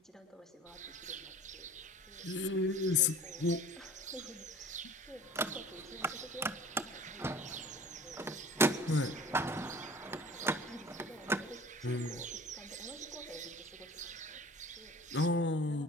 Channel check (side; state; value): both; normal; correlation 0.43